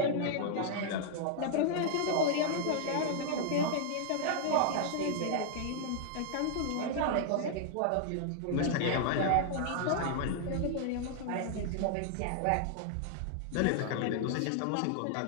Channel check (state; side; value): different; both; correlation -0.01